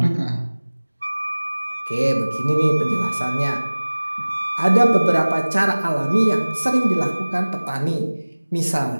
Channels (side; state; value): both; inverted; correlation -1.00